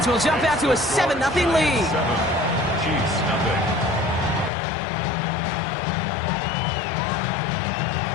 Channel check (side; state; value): right; drops out; at 4.5 s